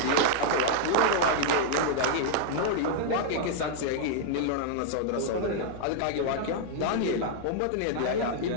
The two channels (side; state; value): both; different; correlation -0.01